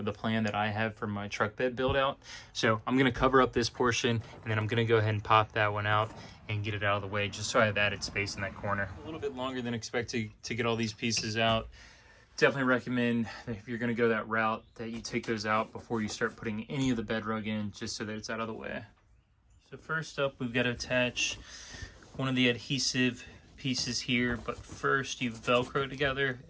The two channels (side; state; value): both; identical; correlation 1.00